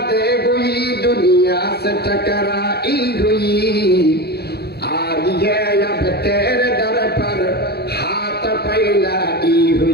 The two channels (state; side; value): late; right; 0.47 ms